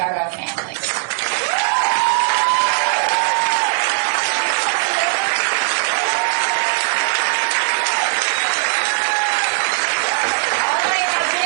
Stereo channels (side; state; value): left; silent; digital silence